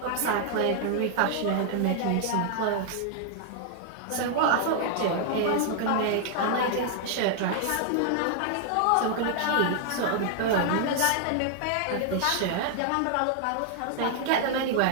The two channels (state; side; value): different; both; correlation 0.00